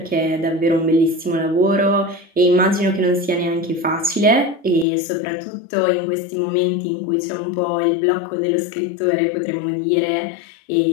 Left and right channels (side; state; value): right; drops out; at 4.9 s